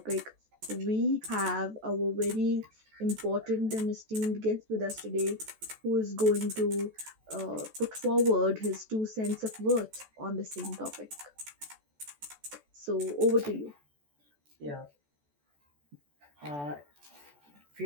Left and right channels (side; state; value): left; late; 14 ms